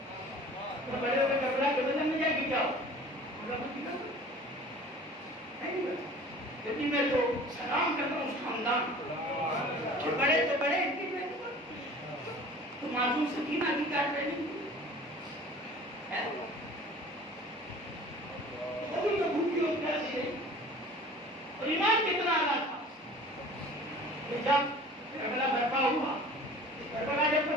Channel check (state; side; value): normal; both; correlation 0.44